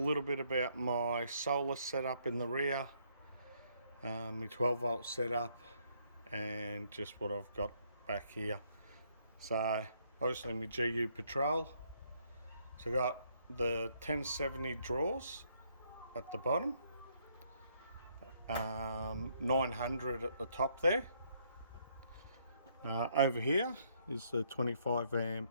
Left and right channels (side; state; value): both; inverted; correlation -0.70